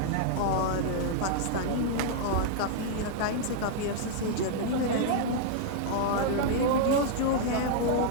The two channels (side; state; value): both; different; correlation -0.01